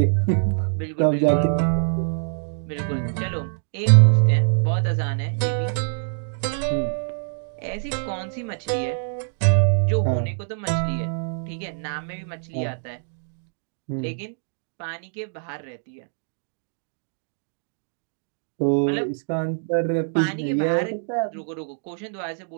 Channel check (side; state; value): left; silent; digital silence